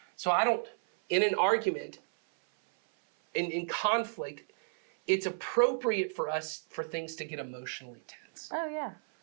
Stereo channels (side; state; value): left; silent; 56 dB below the other